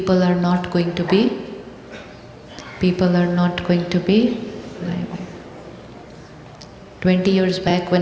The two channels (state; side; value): identical; both; correlation 1.00